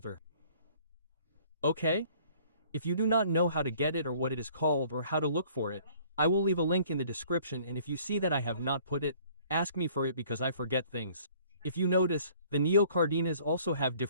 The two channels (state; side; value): inverted; both; correlation -0.56